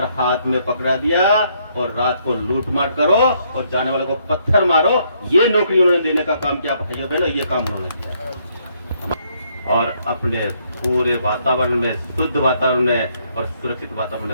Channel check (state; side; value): inverted; both; correlation -0.71